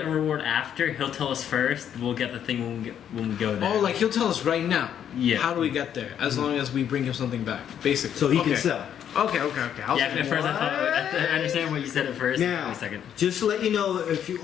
reward after. He'll tell us first. We'll get the thing when we go there. Oh, like he'll tell us right now. Yeah. How do we get there? As long as we bring him something back, basically. So he okay. can sell. Okay. I'll Yeah, at first I thought I understand what you said at first. Now, Wait a second. just to let you know, if you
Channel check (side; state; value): right; quieter; 9.3 dB